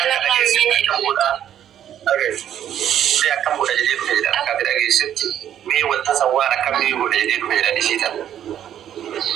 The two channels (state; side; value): quieter; left; 10.4 dB